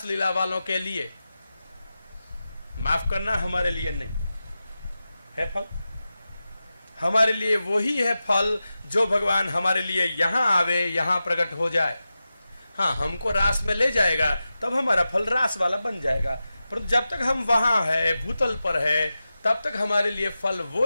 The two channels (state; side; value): inverted; both; correlation -0.93